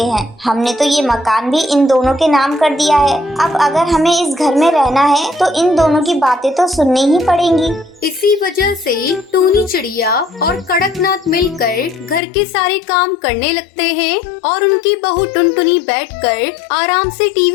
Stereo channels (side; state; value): right; drops out; at 12.2 s